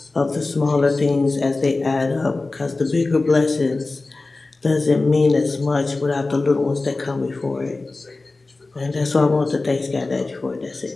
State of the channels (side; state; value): right; quieter; 3.4 dB